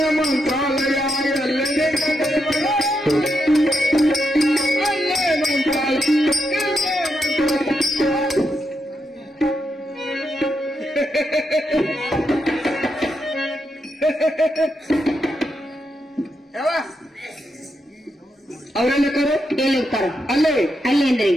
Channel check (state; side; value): normal; both; correlation 0.83